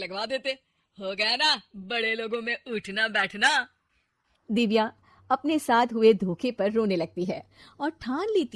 देते। हो गया ना बड़े लोगों में उठना बैठना। दिव्या अपने साथ हुए धोखे पर रोने लगती है और ठान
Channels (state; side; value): identical; both; correlation 1.00